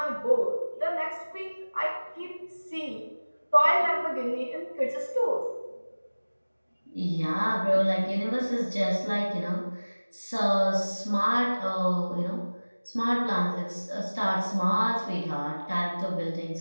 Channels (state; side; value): inverted; both; correlation -1.00